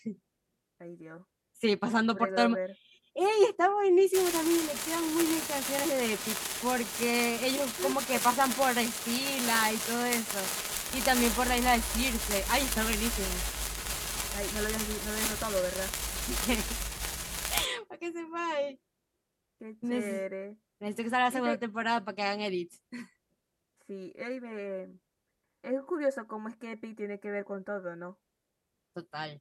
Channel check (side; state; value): both; identical; correlation 1.00